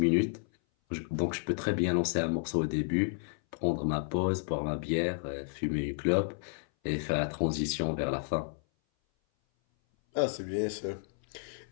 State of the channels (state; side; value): silent; right; 57 dB below the other